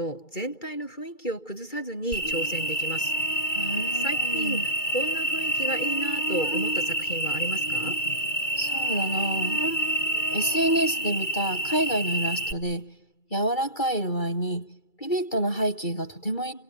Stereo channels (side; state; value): right; late; 2.3 ms